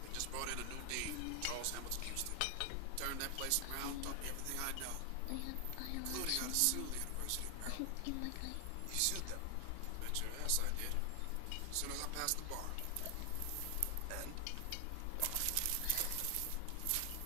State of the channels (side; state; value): both; different; correlation 0.00